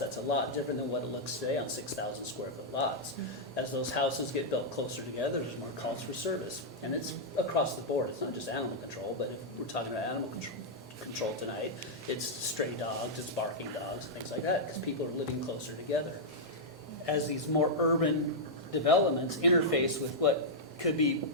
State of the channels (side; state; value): both; normal; correlation -0.08